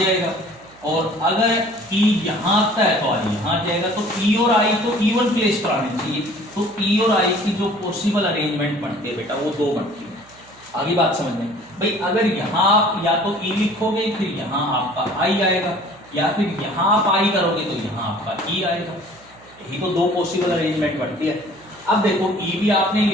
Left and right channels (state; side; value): noise; right; hum, 26 dB below the sound